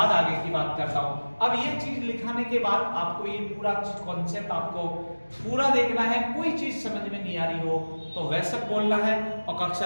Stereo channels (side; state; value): both; inverted; correlation -1.00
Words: आगे की बात करता हूं। अब ये चीज लिखाने के बाद आपको ये पूरा कॉन्सेप्ट आपको पूरा देखना है। कोई चीज समझ में नहीं आ रही हो तो वैसे बोलना है, और